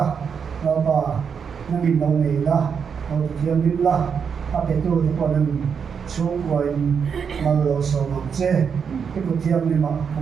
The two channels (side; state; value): left; quieter; 6.6 dB